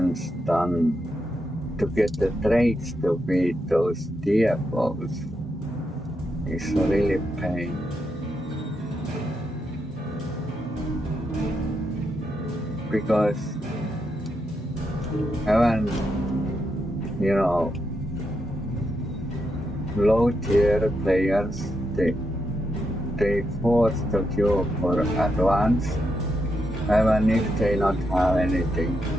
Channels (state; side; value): normal; both; correlation 0.83